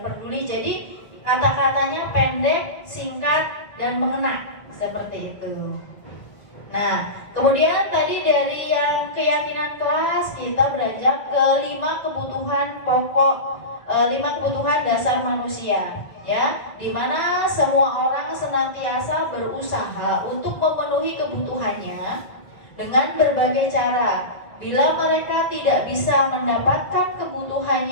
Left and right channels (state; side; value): late; right; 1.5 ms